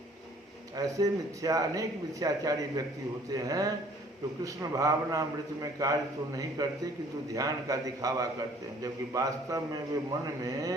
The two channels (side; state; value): both; normal; correlation 0.56